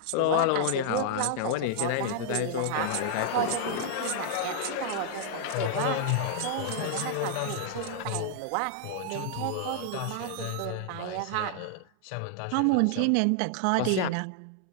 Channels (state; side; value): different; both; correlation -0.01